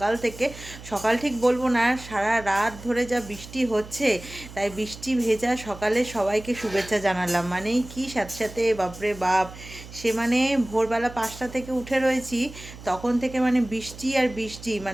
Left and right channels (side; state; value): right; noise; hum, 16 dB below the sound